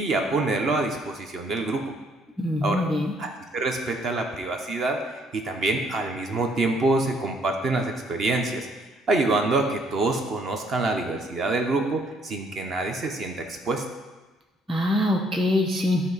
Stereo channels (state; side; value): normal; both; correlation 0.66